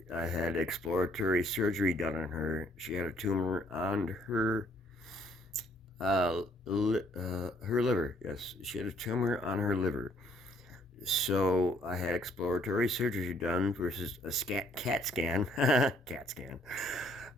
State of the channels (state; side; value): normal; both; correlation 0.65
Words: had exploratory surgery done on her. She had a tumor on her liver. Yes, she had a tumor on her liver. So I had exploratory surgery done versus a CAT scan, CAT scan,